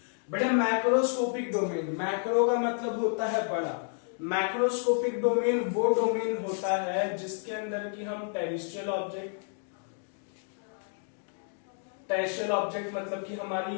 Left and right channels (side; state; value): right; silent; 57 dB below the other